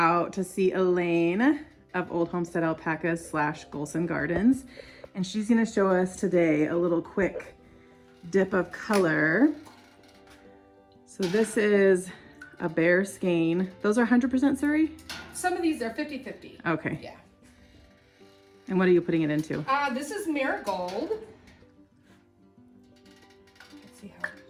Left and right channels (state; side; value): identical; both; correlation 1.00